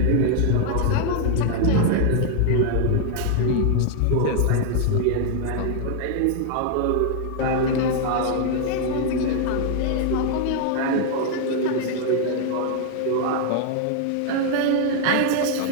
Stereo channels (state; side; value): different; both; correlation 0.00